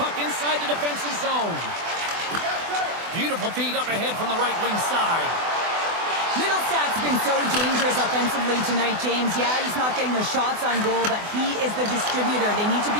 puck inside the defensive zone. Beautiful feed up ahead from the right wing side. Middlestat's been so dangerous offensively tonight, James. Yeah, he's not getting the shots on goal, but he is the distributor. They need to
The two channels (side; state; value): left; late; 24 ms